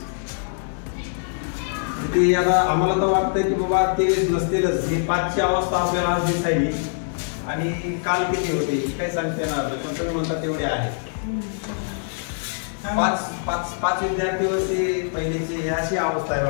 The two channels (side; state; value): right; silent; digital silence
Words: ते आता आम्हाला तर वाटतंय की बाबा 23 नसतीलच. ही 5ची अवस्था आपल्याला आज दिसायली आणि काल किती होते काही सांगता येणार नाही, पण तुम्ही म्हणता तेवढे आहे. 5 विद्यार्थी वर्षी पहिलीची अशी अवस्था आहे